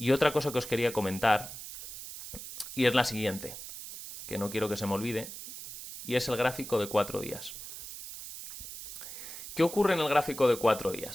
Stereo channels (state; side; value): noise; right; hiss, 11 dB below the sound